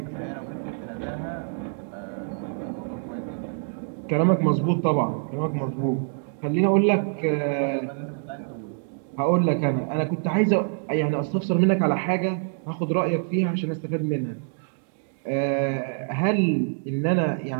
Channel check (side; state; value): left; silent; 61 dB below the other